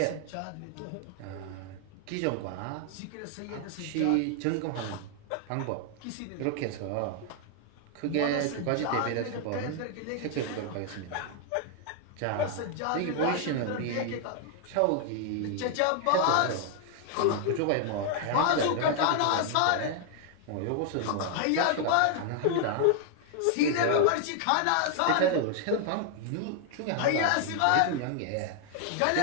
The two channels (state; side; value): different; both; correlation 0.00